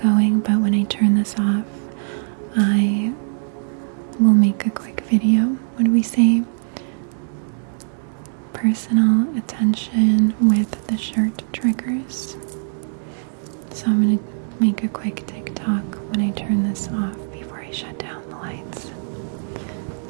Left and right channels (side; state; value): left; silent; 65 dB below the other